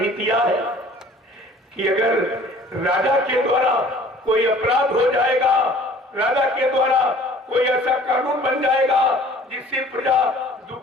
दिया है कि अगर राजा के द्वारा कोई अपराध हो जाएगा, राजा के द्वारा कोई ऐसा कानून बन जाएगा जिससे प्रजा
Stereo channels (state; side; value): normal; both; correlation 0.50